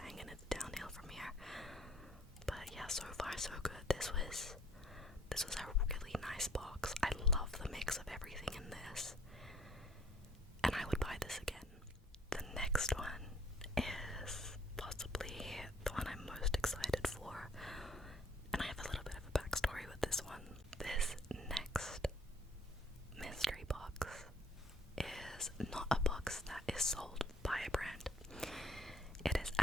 and it's downhill from here. But yeah, so far so good. This was a really nice box. I love the mix of everything in this, and I would buy this again. The next one is possibly the one I'm most excited for, and I have a little bit of a backstory with this one. This next mystery box is not a box that is sold by a brand. It is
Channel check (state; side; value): normal; both; correlation 0.59